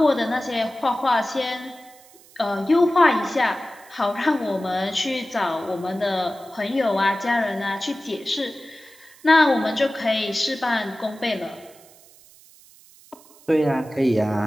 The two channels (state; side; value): noise; right; hiss, 25 dB below the sound